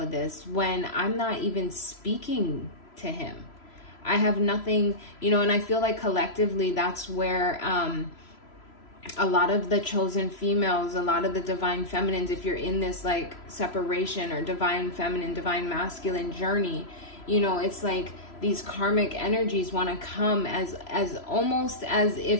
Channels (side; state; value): right; late; 3.0 ms